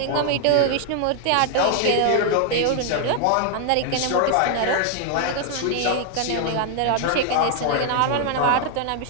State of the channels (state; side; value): different; both; correlation 0.00